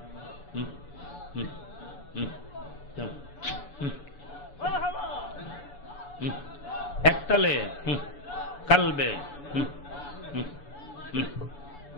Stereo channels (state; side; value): late; right; 6.9 ms